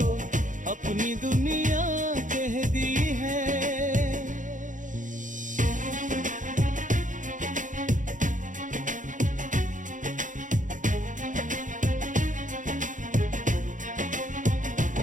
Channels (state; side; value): late; left; 0.37 ms